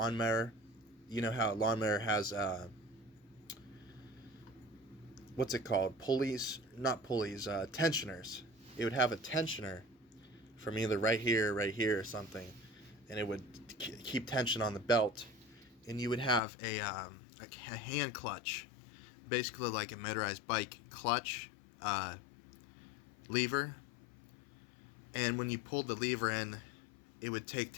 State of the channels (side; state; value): right; drops out; at 16.4 s